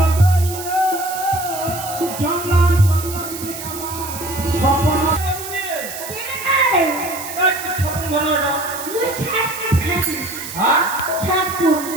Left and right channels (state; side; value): noise; right; hiss, 10 dB below the sound